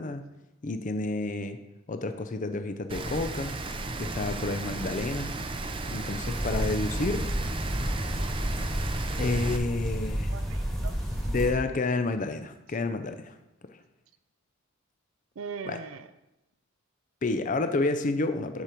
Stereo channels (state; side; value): normal; both; correlation 0.58